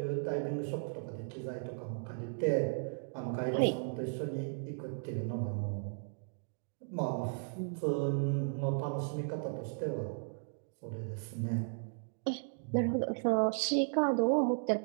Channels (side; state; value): left; silent; digital silence